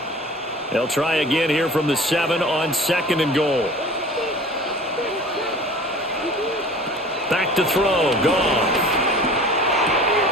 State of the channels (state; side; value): normal; both; correlation 0.43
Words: They'll try again here from the 7 on second and goal. Back to throw. Gone.